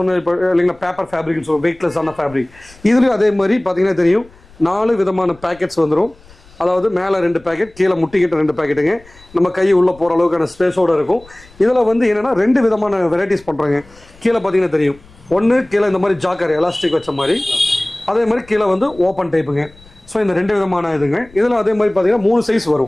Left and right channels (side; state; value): left; noise; rumble, 26 dB below the sound